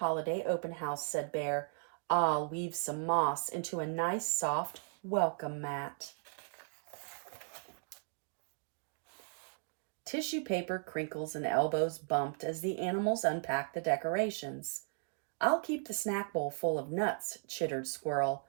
open house, said Bear. I'll weave some moss into a nice, soft welcome mat. Tissue paper crinkles and elbows bumped as the animals unpacked the decorations. I'll keep the snack bowl full of nuts, chittered Squirrel.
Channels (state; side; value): silent; left; 53 dB below the other